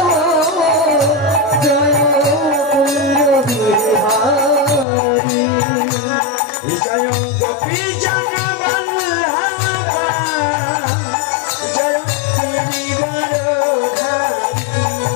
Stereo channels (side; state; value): right; drops out; at 4.9 s